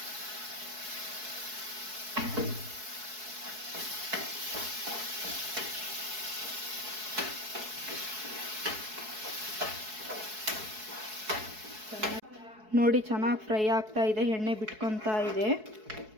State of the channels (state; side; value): late; left; 4.7 ms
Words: ನೋಡಿ, ಚೆನ್ನಾಗಿ ಫ್ರೈ ಆಗ್ತಾ ಇದೆ, ಎಣ್ಣೆ ಬಿಟ್ಕೊತಾ ಇದೆ.